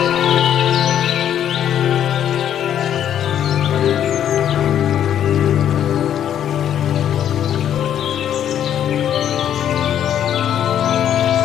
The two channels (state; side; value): quieter; right; 10.1 dB